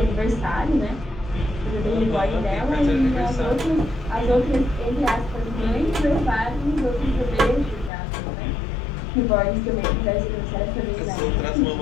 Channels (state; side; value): drops out; right; at 7.9 s